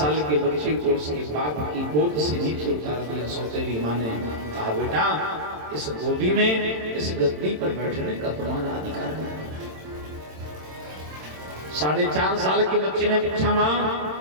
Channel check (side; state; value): left; late; 27 ms